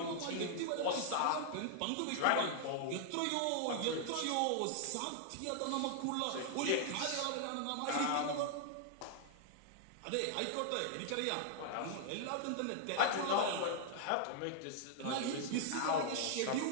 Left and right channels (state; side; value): different; both; correlation 0.00